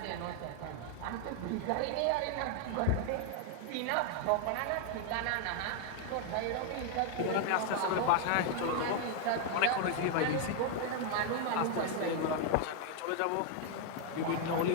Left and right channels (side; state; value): both; different; correlation 0.00